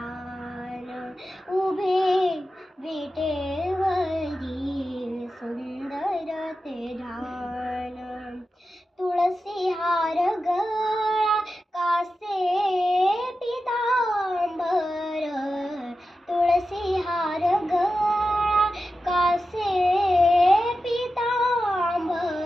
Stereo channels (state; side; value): normal; both; correlation 0.91